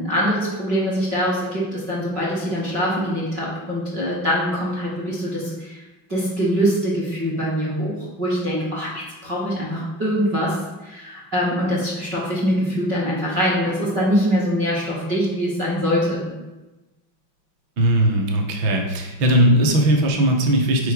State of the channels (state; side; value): late; left; 5.3 ms